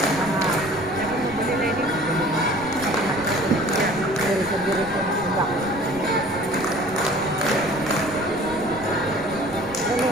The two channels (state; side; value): noise; right; rumble, 19 dB below the sound